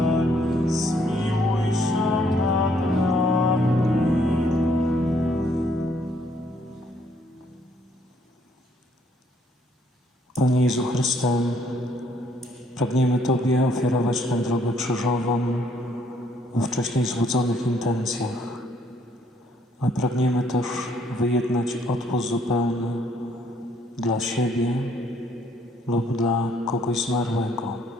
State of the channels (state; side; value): normal; both; correlation 0.67